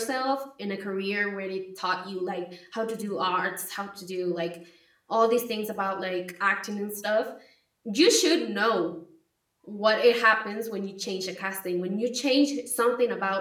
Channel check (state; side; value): identical; both; correlation 1.00